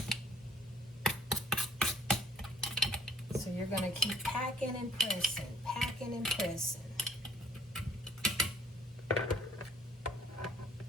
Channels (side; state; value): both; normal; correlation 0.59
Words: So you're going to keep packing and pressing, packing and pressing.